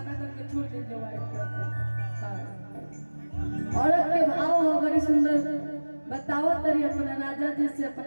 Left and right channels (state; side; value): inverted; both; correlation -1.00